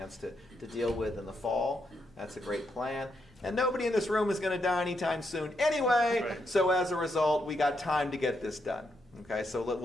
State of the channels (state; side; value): normal; both; correlation 0.80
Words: to deal with in the fall. That's a great plan. And nobody in this room is going to die anytime soon anyway. Right. So as a result, we got time to get this done. Okay, so